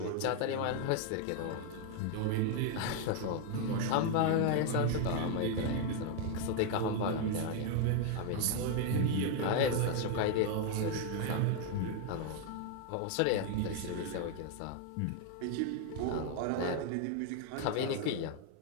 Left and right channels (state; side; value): different; both; correlation 0.01